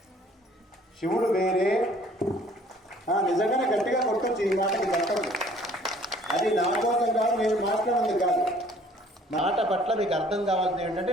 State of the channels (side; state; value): both; normal; correlation 0.56